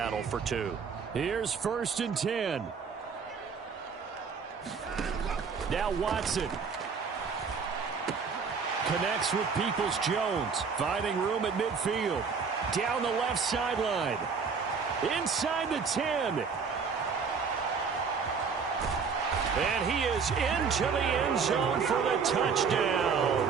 for 2. Here's 1st and 10. Now Watson connects with Peoples-Jones, finding room at midfield. Down the left sideline. Inside the 10. And he is into the end zone for the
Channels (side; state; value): left; quieter; 5.7 dB